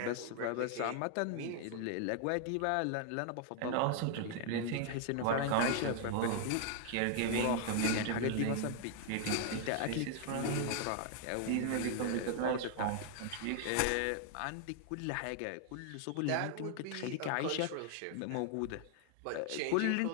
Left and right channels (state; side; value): different; both; correlation 0.00